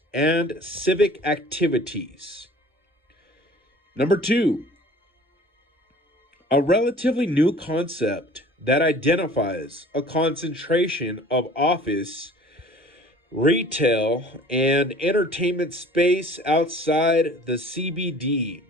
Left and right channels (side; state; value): both; normal; correlation 0.48